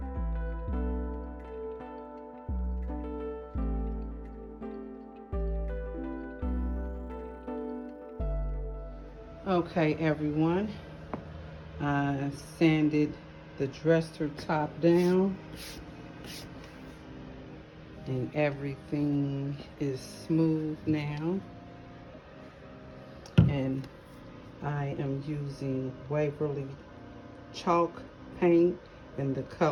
Okay, everyone, I sanded the dresser top down and everything is smooth now, and I am using Waverly chalk paint in the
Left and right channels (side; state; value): both; identical; correlation 1.00